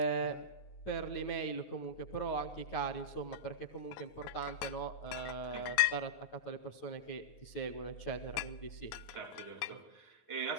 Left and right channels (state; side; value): late; right; 9.5 ms